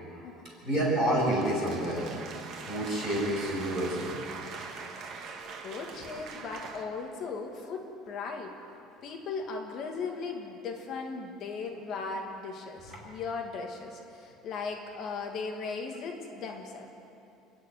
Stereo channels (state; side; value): normal; both; correlation 0.43